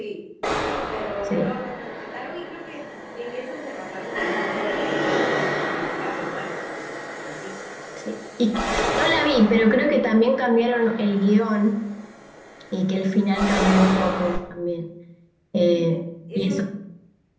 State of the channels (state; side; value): identical; both; correlation 1.00